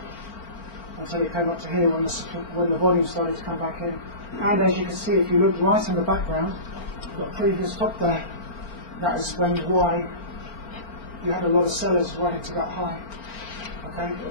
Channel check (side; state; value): right; late; 4.4 ms